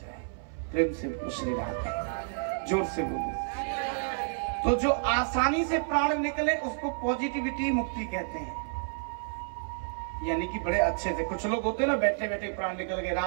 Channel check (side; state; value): left; silent; 58 dB below the other